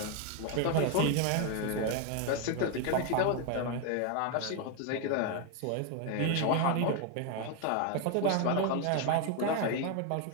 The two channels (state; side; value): different; both; correlation 0.01